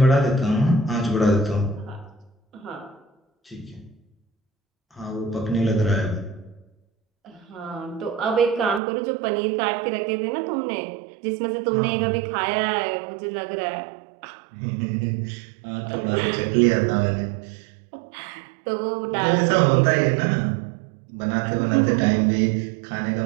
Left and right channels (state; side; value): drops out; left; at 8.8 s